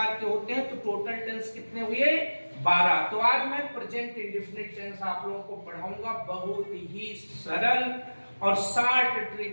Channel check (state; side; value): inverted; both; correlation -1.00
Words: के होते हैं। तो टोटल टेंस कितने हुए? 12। तो आज मैं प्रेजेंट इंडेफिनिट टेंस आप लोगों को पढ़ाऊंगा। बहुत ही सरल और शॉर्ट